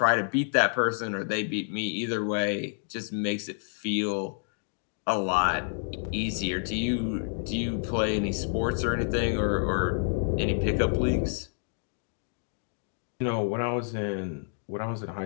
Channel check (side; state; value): right; silent; digital silence